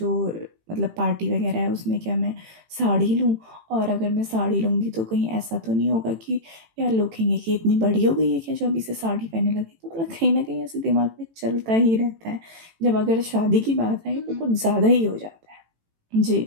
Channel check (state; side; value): late; left; 18 ms